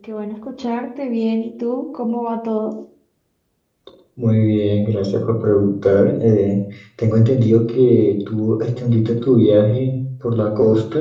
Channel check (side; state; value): both; identical; correlation 1.00